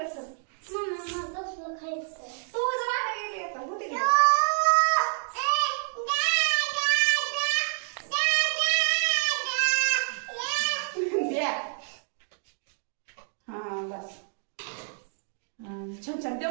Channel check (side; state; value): left; silent; 59 dB below the other